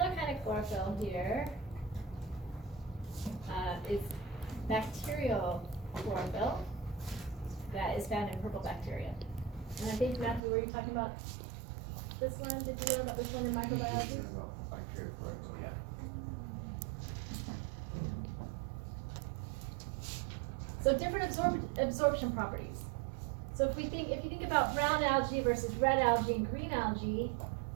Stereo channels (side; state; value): left; drops out; at 10.4 s